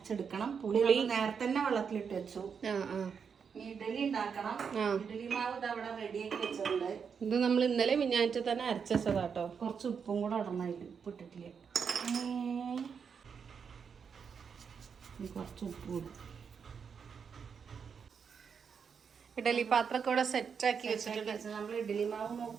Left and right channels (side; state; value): left; quieter; 6.5 dB